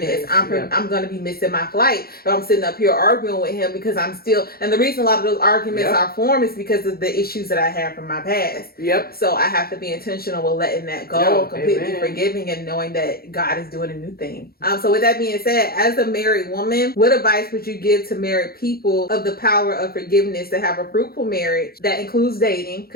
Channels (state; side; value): late; right; 0.44 ms